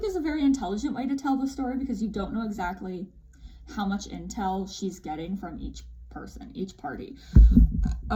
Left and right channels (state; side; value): identical; both; correlation 1.00